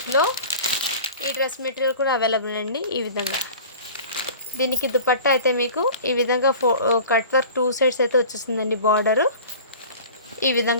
ఈ డ్రెస్ మెటీరియల్ కూడా అవైలబుల్ అండి. ఈ విధంగా దీనికి దుపట్టా అయితే మీకు ఈ విధంగా కట్ వర్క్ 2 సైడ్స్ అయితే వచ్చేసిందండి. బార్డరు ఈ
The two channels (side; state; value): both; inverted; correlation -0.41